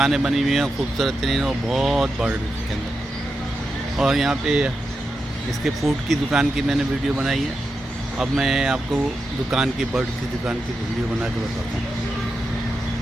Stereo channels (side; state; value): both; normal; correlation 0.88